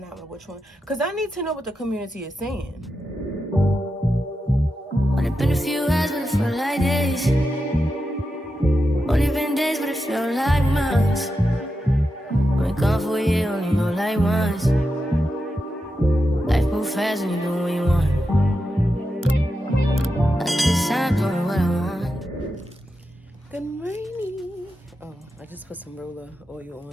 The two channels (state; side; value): normal; both; correlation 0.89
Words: that one, which one? Because I need to know what the community is saying. Only been a few hours, but it felt like days. Only been days, but it felt like months. Been gone for a year, only know like once. Life moves fast when you do what you want. At this time, doing what I want. Good morning. Oh, I just put some roller oil